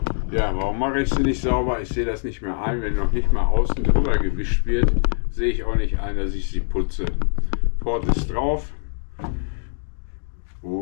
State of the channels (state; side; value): silent; right; 64 dB below the other